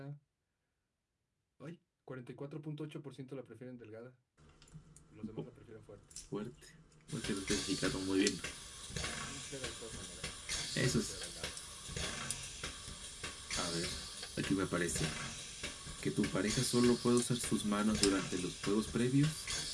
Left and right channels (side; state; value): both; identical; correlation 1.00